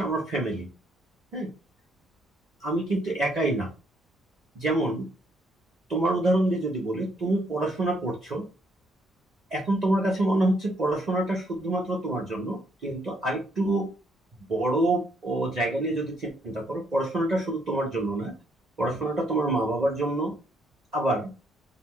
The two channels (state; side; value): normal; both; correlation 0.71